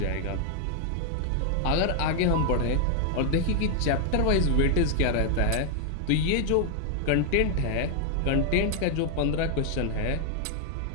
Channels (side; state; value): both; different; correlation 0.00